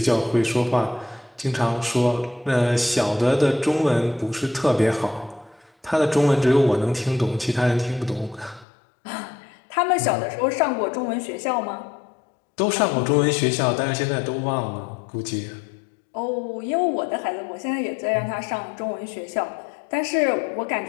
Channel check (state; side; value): drops out; right; at 8.7 s